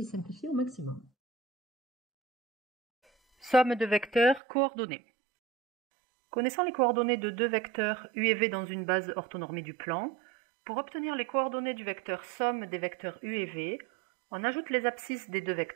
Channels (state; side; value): drops out; left; at 4.4 s